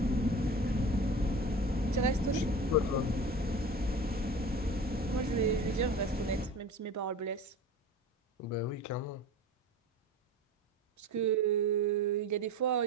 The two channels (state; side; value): normal; both; correlation 0.35